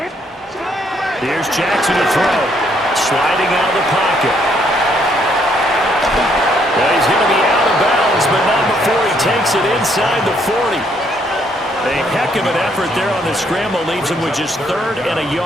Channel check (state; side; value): normal; both; correlation 0.70